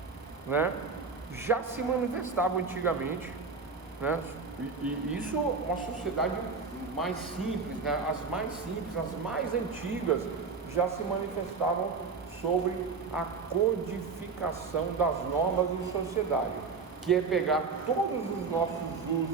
né, já se manifestava antigamente, né, e isso uma sociedade mais simples, né, as mais antigas já se manifestavam sobre a codificação das normas de sociedade, que é pegar todos os nossos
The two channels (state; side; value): quieter; left; 4.8 dB